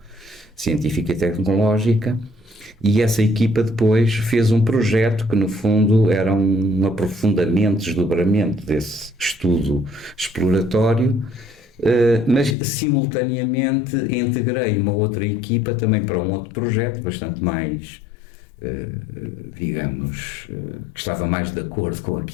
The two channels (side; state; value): right; drops out; at 12.6 s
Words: Científica e Tecnológica, e essa equipa depois fez um projeto que, no fundo, era um aprofundamento, desdobramento desse estudo exploratório, mas simultaneamente integrei uma outra equipa também para um outro projeto bastante mais, digamos, que estava mais de acordo com